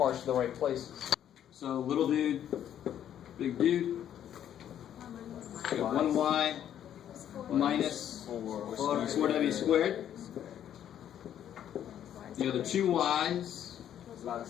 to the right places. So little dude, big dude. We got 1y minus 4w squared. The other 2 y's.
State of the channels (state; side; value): quieter; right; 10.3 dB